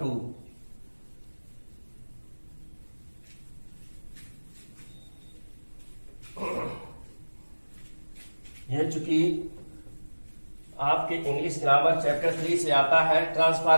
यह चूंकि आपके इंग्लिश ग्रामर चैप्टर 3 से आता है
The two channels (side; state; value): both; inverted; correlation -1.00